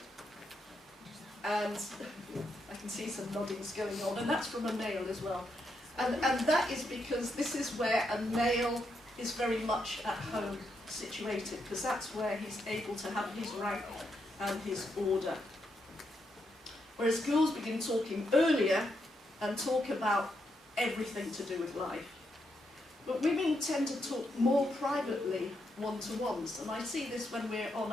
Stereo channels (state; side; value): normal; both; correlation 0.81